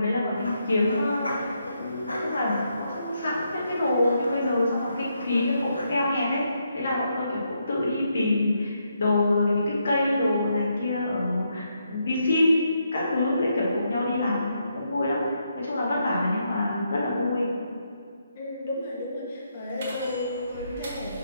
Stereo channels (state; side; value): inverted; both; correlation -0.79